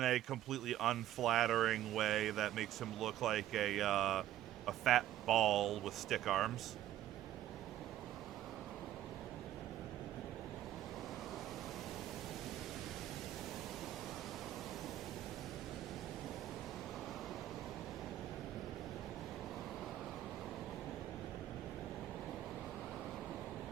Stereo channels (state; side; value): quieter; left; 12.9 dB